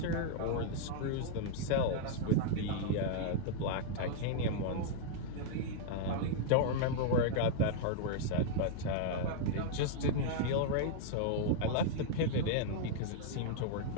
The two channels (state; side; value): different; both; correlation -0.01